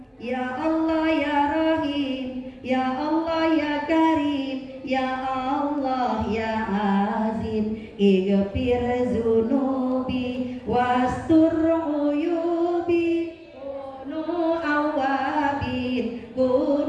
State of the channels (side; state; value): both; identical; correlation 1.00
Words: ya Allah ya Rahim, ya Allah ya Karim, ya Allah ya Azim, ighfir zunubi wastur uyubi, kunu awabin